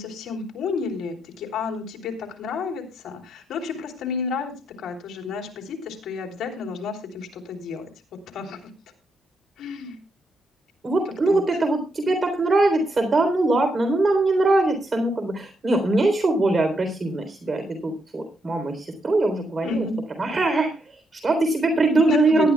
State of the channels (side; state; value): both; normal; correlation 0.79